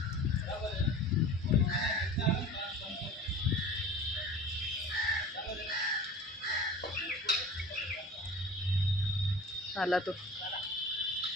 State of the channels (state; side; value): normal; both; correlation 0.40